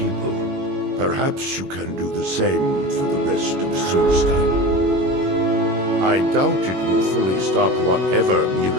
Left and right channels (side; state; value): left; late; 21 ms